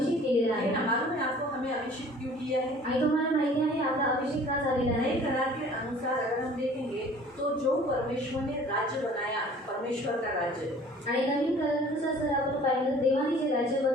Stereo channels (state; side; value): normal; both; correlation 0.49